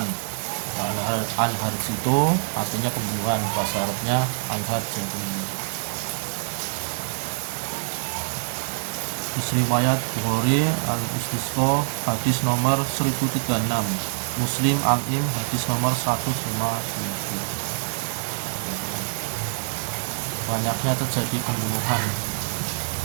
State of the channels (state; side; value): silent; left; digital silence